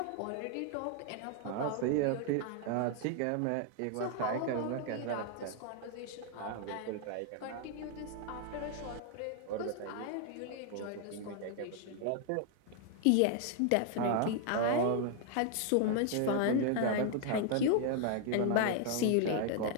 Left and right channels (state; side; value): different; both; correlation 0.00